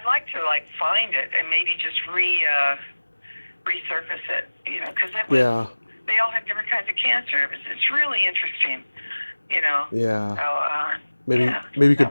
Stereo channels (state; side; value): inverted; both; correlation -1.00